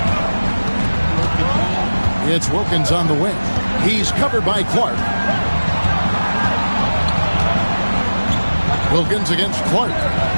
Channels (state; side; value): inverted; both; correlation -1.00